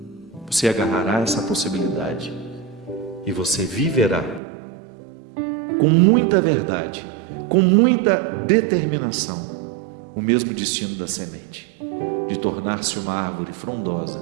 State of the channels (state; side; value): drops out; left; at 4.4 s